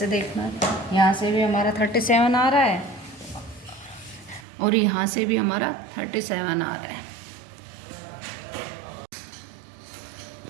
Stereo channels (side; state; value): left; drops out; at 4.5 s